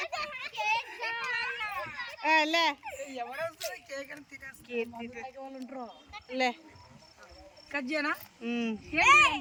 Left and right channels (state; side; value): identical; both; correlation 1.00